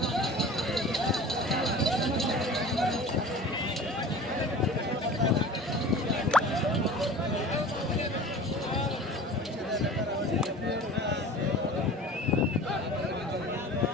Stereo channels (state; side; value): normal; both; correlation 0.39